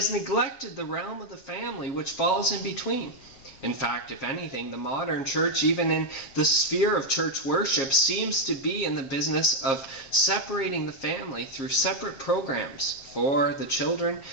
neglected the realm of the family, which falls in between. In fact, if anything, the modern church, even in the sphere of church worship, seems to be in the business of separating the family through separate programs for the children,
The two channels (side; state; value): right; late; 7.5 ms